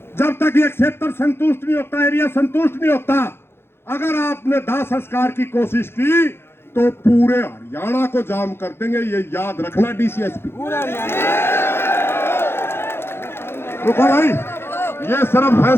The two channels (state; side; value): late; right; 0.11 ms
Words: जब तक ये क्षेत्र संतुष्ट नहीं होता, एरिया संतुष्ट नहीं होता, अगर आपने दाह संस्कार की कोशिश की तो पूरे हरियाणा को जाम कर देंगे। ये याद रखना डीसीएसपी। रुको भाई, ये सिर्फ